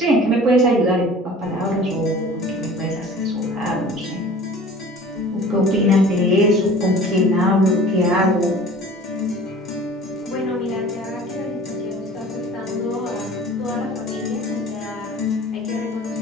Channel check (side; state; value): both; normal; correlation 0.44